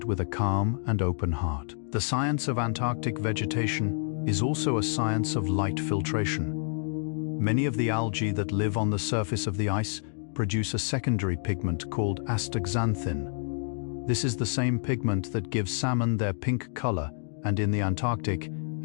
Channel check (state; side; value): silent; right; digital silence